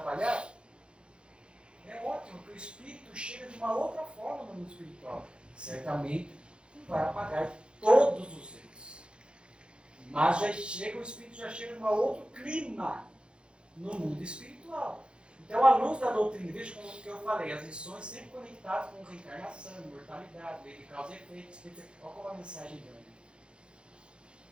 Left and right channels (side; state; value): left; late; 0.055 ms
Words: é ótimo, porque o espírito chega de uma outra forma no mundo espiritual. Certamente não vai apagar todos os erros. Mas o espírito já chega de um outro clima no mundo espiritual. Então, à luz da doutrina, veja como que eu falei, as lições sempre conectadas com reencarnação, mortalidade, lei de causa e efeito. Olha como a mensagem grande.